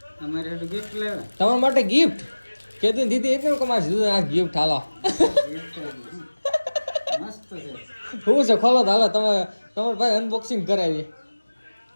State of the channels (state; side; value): inverted; both; correlation -1.00